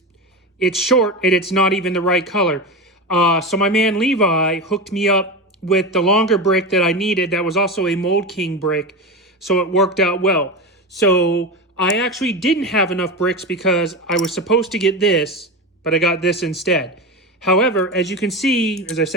it's short and it's not even the right color. So my man Levi hooked me up with the longer brick that I needed that was also a Mould King brick, so it worked out well. So I actually didn't have enough bricks because I was supposed to get this, but I got this instead. However, as you can see, as I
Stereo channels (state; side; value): normal; both; correlation 0.21